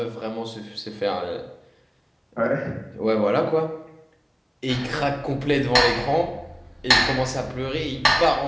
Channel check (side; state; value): both; identical; correlation 1.00